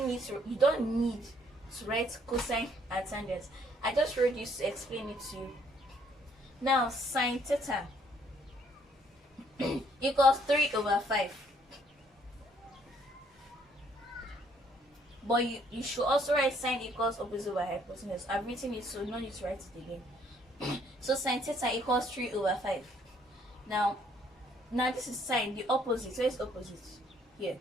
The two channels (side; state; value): both; normal; correlation 0.65